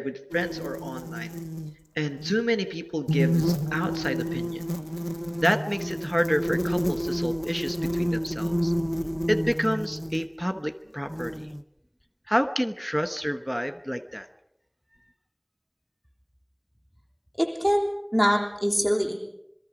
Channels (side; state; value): both; identical; correlation 1.00